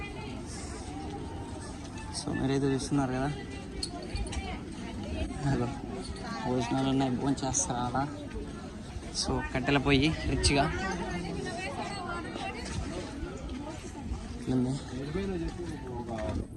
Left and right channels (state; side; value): identical; both; correlation 1.00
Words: సో మీరైతే చూస్తున్నారు కదా, అదో భోజనాలు ఉన్నాయి, భోజనం చేస్తారా. సో కట్టెల పొయ్యి రిచ్గా ఉంది.